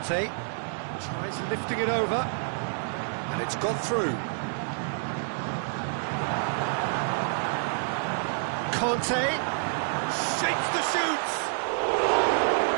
tries lifting it over, and it's gone through. Conte shakes the shoots.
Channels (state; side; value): silent; left; digital silence